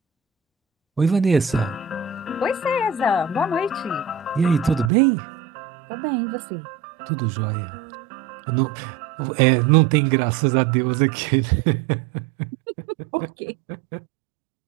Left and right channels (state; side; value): drops out; left; at 4.9 s